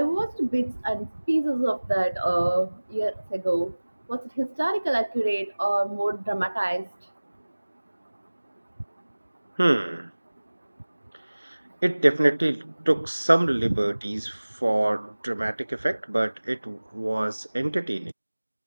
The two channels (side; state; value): both; inverted; correlation -1.00